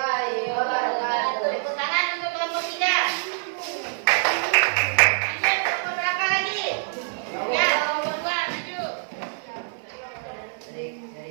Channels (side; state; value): left; silent; 58 dB below the other